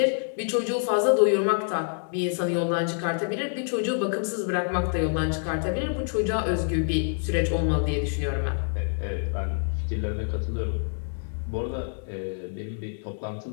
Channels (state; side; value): silent; right; digital silence